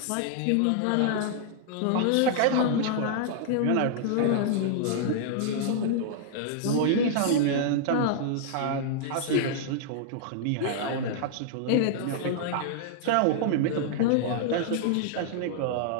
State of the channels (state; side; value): different; both; correlation -0.01